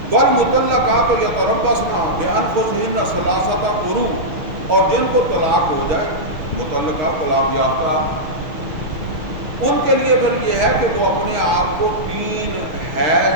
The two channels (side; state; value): left; late; 6.5 ms